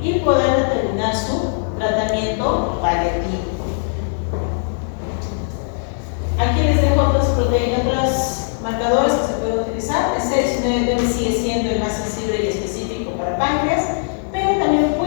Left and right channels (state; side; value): silent; right; digital silence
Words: y poder determinar su tratamiento paliativo. Aquí les dejo otros marcadores que se pueden utilizar. El C19 sigue siendo el más sensible y específico para páncreas, pero también